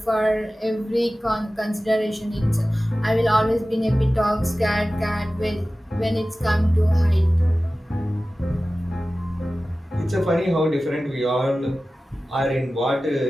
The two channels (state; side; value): normal; both; correlation 0.96